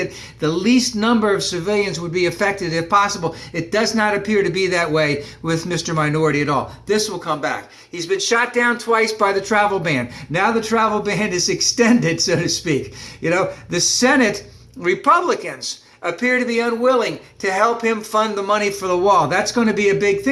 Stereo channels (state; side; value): identical; both; correlation 1.00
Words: the least number of civilians would be affected if possible. It does not appear to be that way with Mr. Minority at all. This will come back. He's been shot down twice by the travel ban. Now the travel ban is extended, so to speak. The Senate Republicans appear to be unwilling to help him fund the money for the wall. That's going to be a big